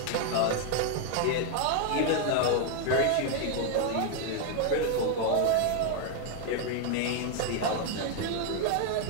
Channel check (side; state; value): both; different; correlation 0.00